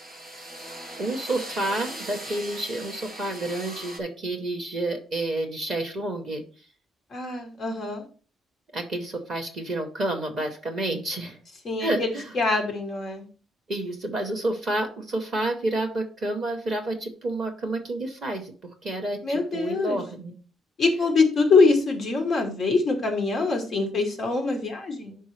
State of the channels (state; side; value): normal; both; correlation 0.74